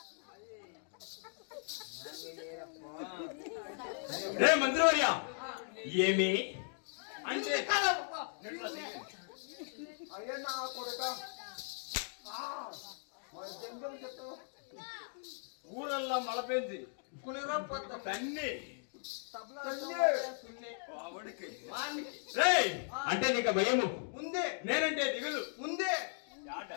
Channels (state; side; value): silent; right; digital silence